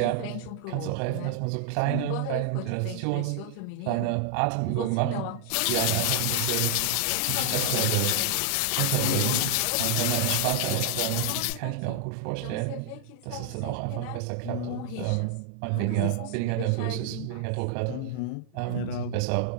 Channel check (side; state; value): both; different; correlation 0.00